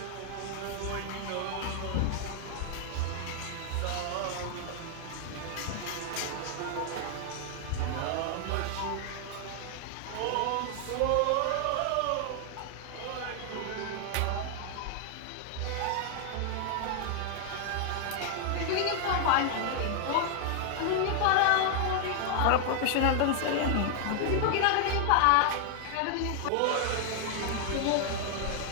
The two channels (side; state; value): both; different; correlation 0.00